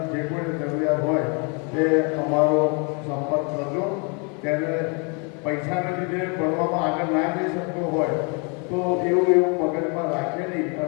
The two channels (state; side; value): quieter; right; 34.7 dB